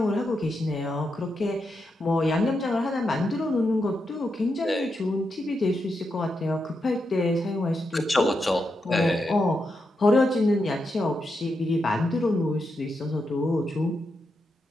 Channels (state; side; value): normal; both; correlation 0.85